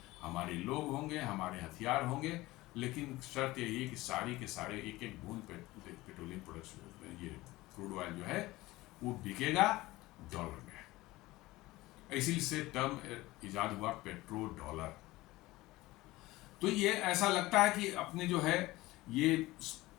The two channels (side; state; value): right; quieter; 19.1 dB